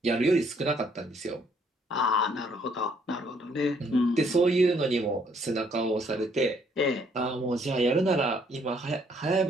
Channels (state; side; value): normal; both; correlation 0.66